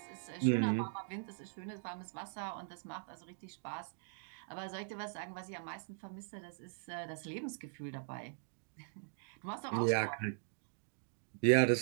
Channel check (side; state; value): left; silent; digital silence